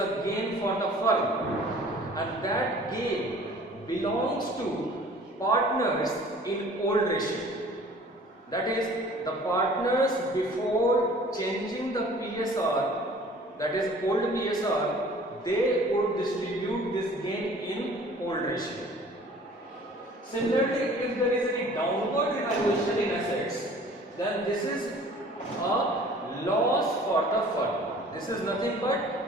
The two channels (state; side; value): normal; both; correlation 0.49